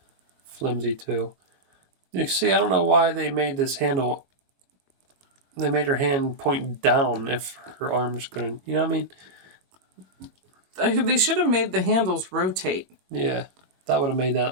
flimsy too. You see, I don't know why they made this handle. They made her hand point down if her arms couldn't. You know what I mean? They should have made the handles rotate. Yeah, that would have made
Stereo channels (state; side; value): late; left; 22 ms